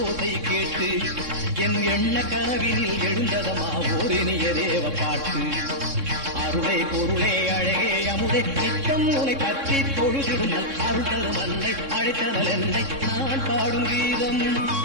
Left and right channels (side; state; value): left; late; 3.6 ms